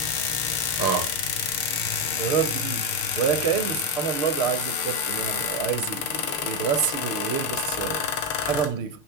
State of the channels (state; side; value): late; right; 6.6 ms